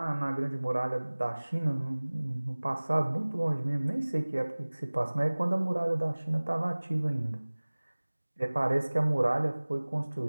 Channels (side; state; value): both; inverted; correlation -1.00